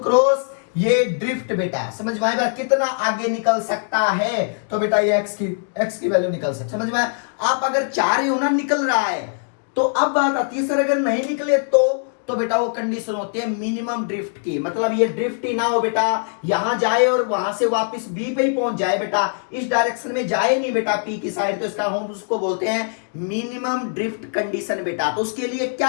ये ड्रिफ्ट बेटा, समझ में आएगा कितना आगे निकल सकता है, तो बेटा ये एक्स की वैल्यू निकल सकती, समझ में आया। आप अगर चाह रहे हो ना निकल रहा है, तो अब बात आती है सर अगर नहीं निकले तो बेटा वो कंडीशन होती है मिनिमम ड्रिफ्ट की, मतलब ये ड्रिफ्ट ही ना हो बेटा, यहां जाए और वहां से वापस बी पे ही पहुंच जाए बेटा, इस डायरेक्शन में जाए नहीं बेटा पी की साइड, तो इसका हम उसको बोलते हैं मिनिमम ड्रिफ्ट कंडीशन बेटा। तो उसके लिए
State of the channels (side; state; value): right; silent; digital silence